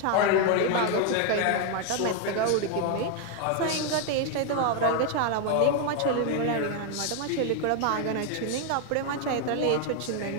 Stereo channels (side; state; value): both; different; correlation 0.01